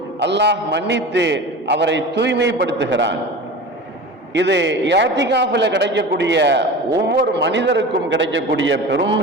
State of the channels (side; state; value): both; normal; correlation 0.33